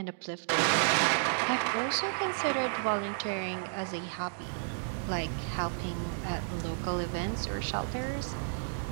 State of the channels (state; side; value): silent; left; digital silence